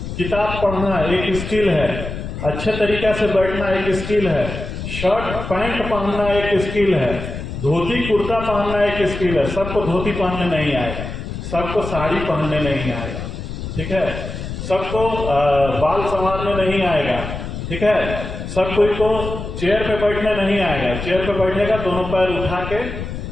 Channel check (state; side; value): noise; left; rumble, 7 dB below the sound